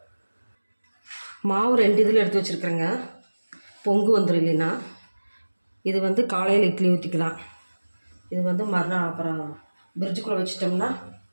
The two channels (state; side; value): inverted; both; correlation -1.00